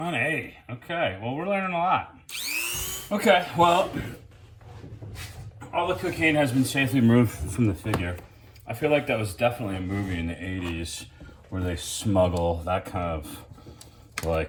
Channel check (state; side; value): identical; both; correlation 1.00